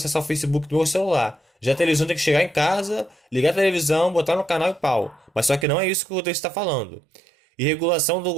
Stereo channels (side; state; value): left; drops out; at 5.7 s